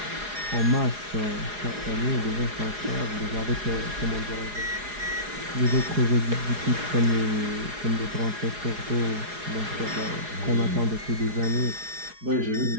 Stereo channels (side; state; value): left; late; 4.8 ms